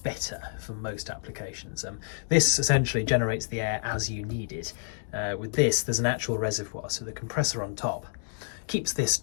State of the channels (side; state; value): right; silent; digital silence